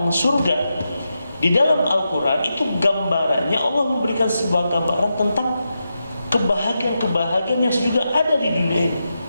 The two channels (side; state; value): both; inverted; correlation -0.87